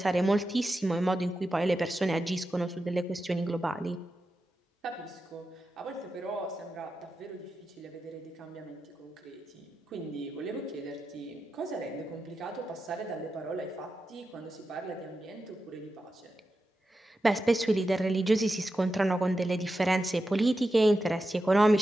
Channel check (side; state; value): both; normal; correlation 0.90